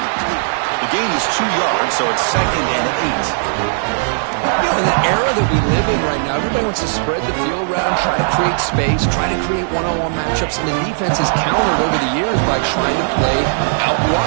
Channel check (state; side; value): silent; left; digital silence